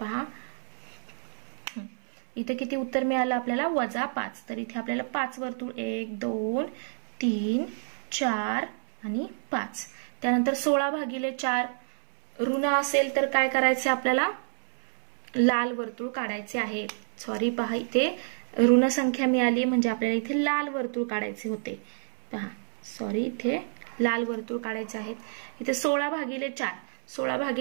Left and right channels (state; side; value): silent; left; 59 dB below the other